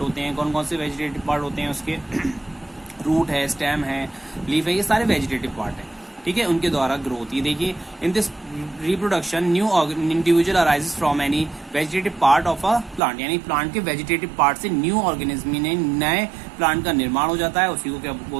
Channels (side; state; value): left; drops out; at 13.0 s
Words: होते हैं। कौन कौन से वेजिटेटिव पार्ट होते हैं उसके? रूट है, स्टेम है, लीफ है, ये सारे वेजिटेटिव पार्ट है। ठीक है, उनके द्वारा ग्रो होती है। देखिए, in this reproduction new individual arises from any vegetative part of a plant, यानी प्लांट के वेजिटेटिव पार्ट से न्यू ऑर्गेनिज्म ने नए प्लांट का निर्माण हो जाता है। उसी को क्या